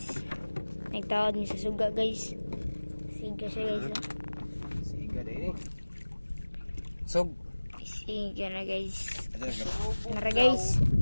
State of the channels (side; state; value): both; inverted; correlation -1.00